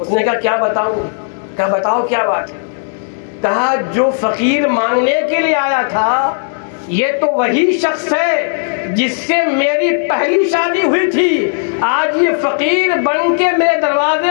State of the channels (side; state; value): right; silent; digital silence